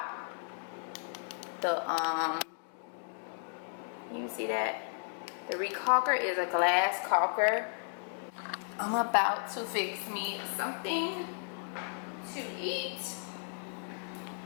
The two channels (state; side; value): silent; right; 55 dB below the other